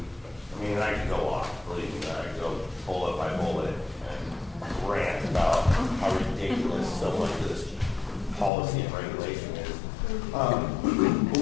I mean, I could go off, believe me, I could go bullet by bullet and rant about how ridiculous so much of this policy and regulation is. But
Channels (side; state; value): right; drops out; at 8.5 s